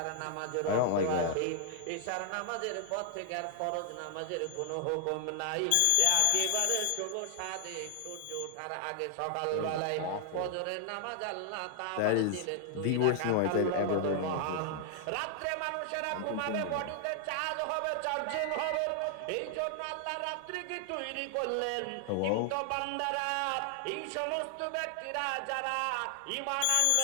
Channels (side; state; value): both; different; correlation 0.00